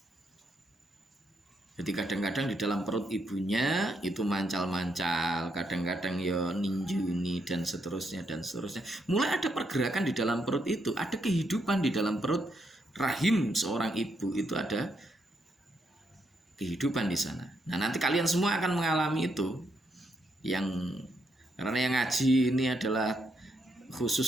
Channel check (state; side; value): normal; both; correlation 0.78